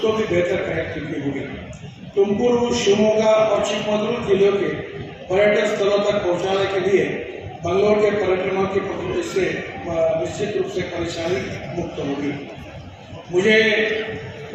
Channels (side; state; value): both; identical; correlation 1.00